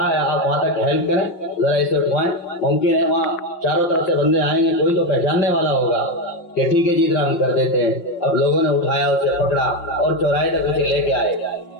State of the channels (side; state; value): right; late; 5.6 ms